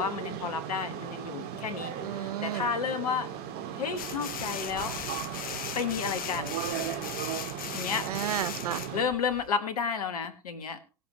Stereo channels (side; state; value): both; normal; correlation 0.08